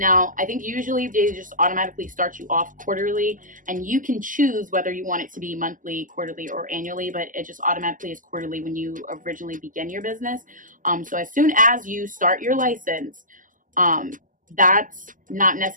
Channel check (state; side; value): late; left; 0.38 ms